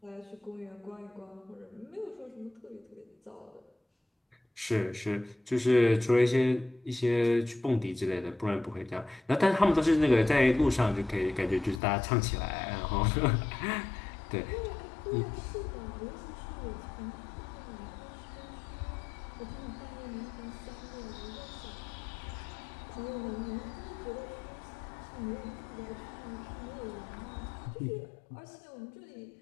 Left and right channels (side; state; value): right; drops out; at 11.8 s